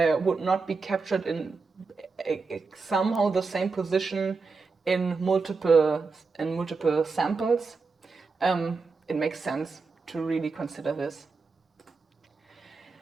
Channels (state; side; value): quieter; left; 4.4 dB